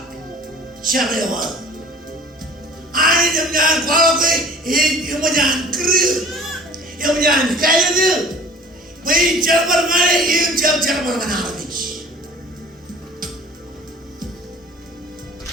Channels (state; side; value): normal; both; correlation 0.47